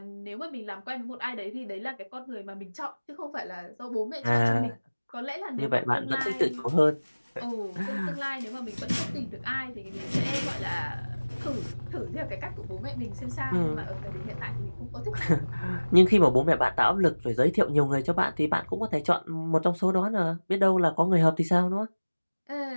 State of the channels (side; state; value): both; inverted; correlation -1.00